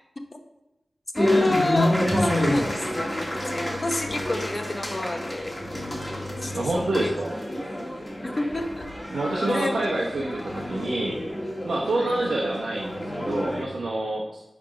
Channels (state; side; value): normal; both; correlation 0.94